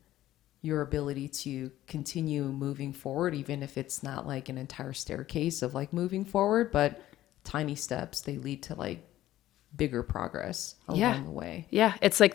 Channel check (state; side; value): quieter; right; 14.3 dB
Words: your ability to continue moving forward, even if it's not like an entire staircase of like moving forward, but tiny steps, they lead to like bigger progress along the way. Yeah. It's like